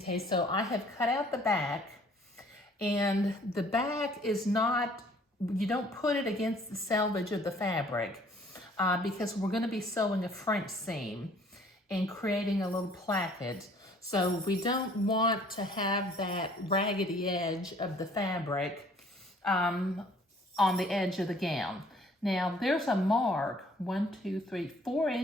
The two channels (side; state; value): both; normal; correlation 0.57